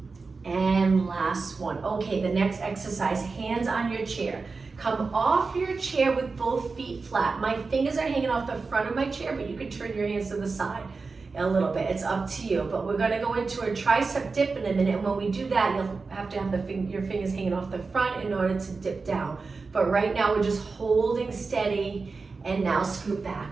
and last one. Okay, the next exercise, hands on your chair. Come off your chair with both feet flat. My fingers are hanging off the front of my chair, but you can turn your hands to the side a little bit. It's up to you, but we're gonna go into a tricep dip in a minute, and when we do that, you'll have to have your fingers hanging off the front in order to dip down. But right now, we're just holding steady, and now scoot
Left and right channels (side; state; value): left; quieter; 4.3 dB